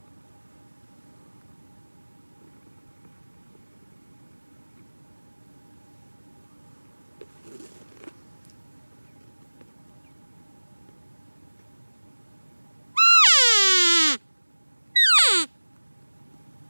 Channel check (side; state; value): both; inverted; correlation -1.00